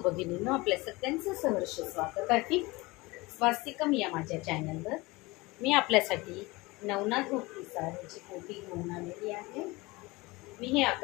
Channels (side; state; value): right; quieter; 22.7 dB